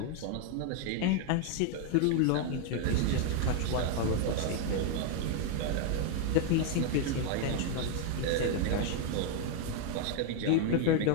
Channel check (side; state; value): both; different; correlation 0.00